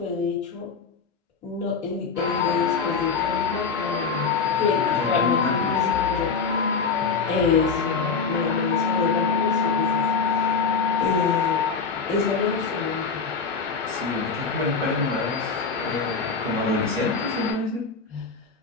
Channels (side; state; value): right; quieter; 5.3 dB